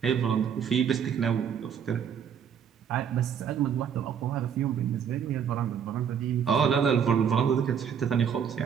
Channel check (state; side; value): quieter; left; 7.8 dB